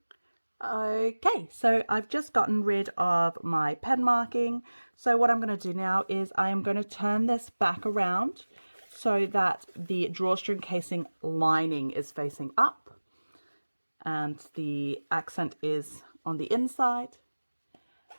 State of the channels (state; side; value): inverted; both; correlation -1.00